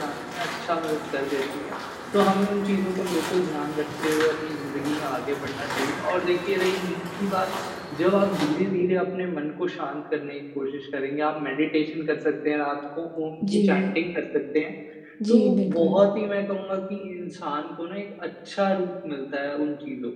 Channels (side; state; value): both; identical; correlation 1.00